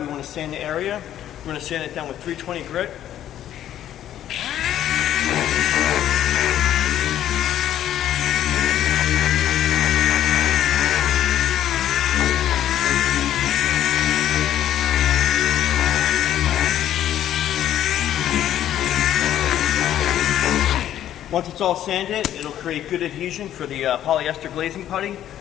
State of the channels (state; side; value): quieter; right; 11.5 dB